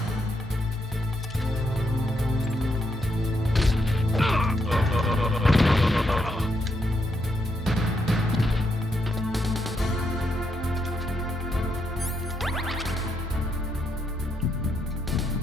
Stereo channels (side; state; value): both; normal; correlation 0.79